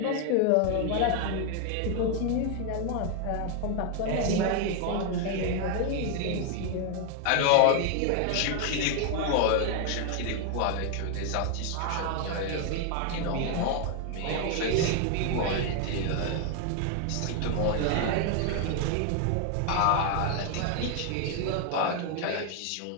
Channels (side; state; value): both; different; correlation 0.00